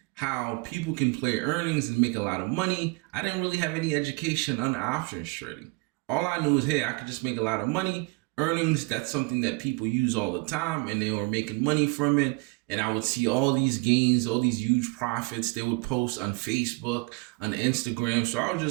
how people can play earnings and make a lot of money. I didn't really have any education on options trading. All I knew is, hey, I could just make a lot of money. Earnings, that's something that people use all the time, and they were making money from it. And I would see all these gains, all these huge profits they would post on Facebook, on Instagram. So I was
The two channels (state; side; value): quieter; left; 28.3 dB